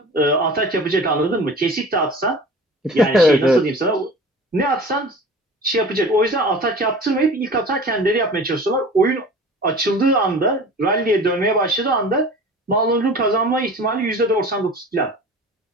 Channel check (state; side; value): normal; both; correlation 0.40